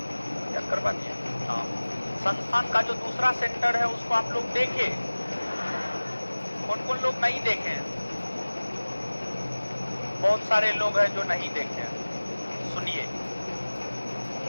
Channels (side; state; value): both; inverted; correlation -1.00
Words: याद करवा दिए? हाँ। संस्थान का जो दूसरा सेंटर है उसको आप लोग देखें। कौन कौन लोग नहीं देखे? बहुत सारे लोग हैं जो नहीं देखे। सुनिए,